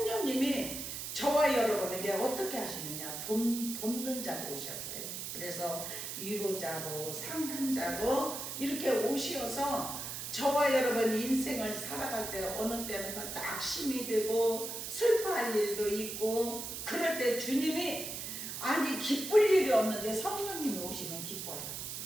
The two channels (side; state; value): right; noise; hiss, 6 dB below the sound